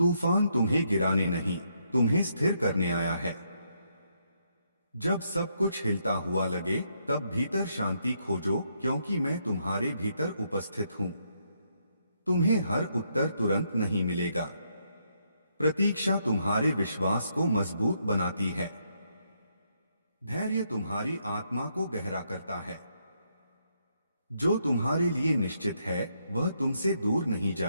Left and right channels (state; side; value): inverted; both; correlation -0.76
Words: तुम्हें गिराने नहीं, तुम्हें स्थिर करने आया है। जब सब कुछ हिलता हुआ लगे तब भीतर शांति खोजो, क्योंकि मैं तुम्हारे भीतर उपस्थित हूं। तुम्हें हर उत्तर तुरंत नहीं मिलेगा। प्रतीक्षा तुम्हारे विश्वास को मजबूत बनाती है। धैर्य तुम्हारी आत्मा को गहरा करता है। जो तुम्हारे लिए निश्चित है वह तुमसे दूर नहीं